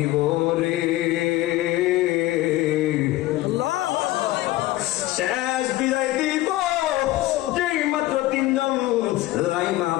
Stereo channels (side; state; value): right; quieter; 17.0 dB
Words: রে, শেষ বিদায় দিব, যেই মাত্র 3 জন লাইমা